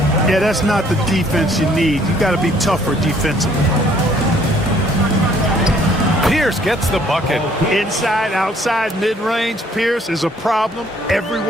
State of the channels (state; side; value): normal; both; correlation 0.62